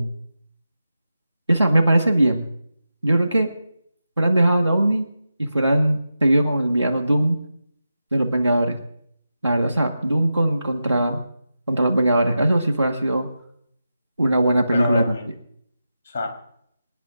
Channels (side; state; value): both; inverted; correlation -0.90